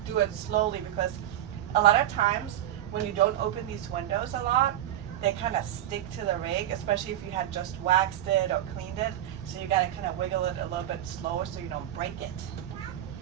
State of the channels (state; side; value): quieter; left; 12.2 dB